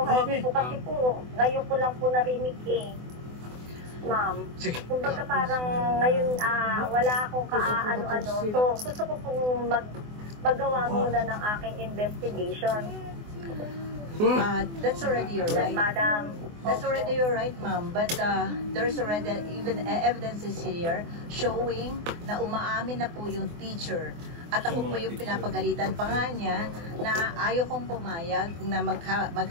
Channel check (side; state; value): left; late; 24 ms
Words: po kasi po, ngayon ko lang po narinig ma'am. Sige. Kumbaga parang ngayon wala akong kaano-ano. So gusto ko pong maggawa muna ng aking investigation. That's already your right. Madam. That's already your right, ma'am. But there's already even evidences here showing na umaamin na po yung teacher. At ako po yung pinapagalitan pa nga niya na ayaw kong pumayag na